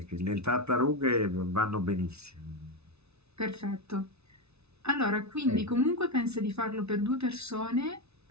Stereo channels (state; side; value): late; left; 0.80 ms